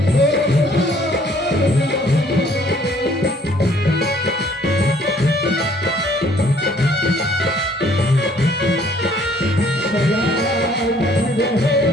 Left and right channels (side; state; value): both; normal; correlation 0.60